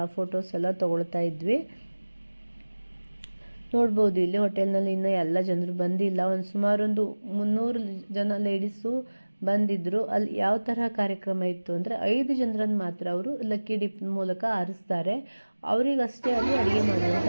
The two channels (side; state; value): both; inverted; correlation -1.00